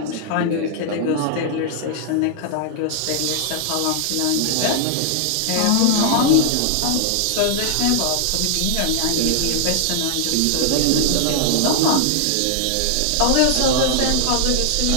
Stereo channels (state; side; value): different; both; correlation 0.00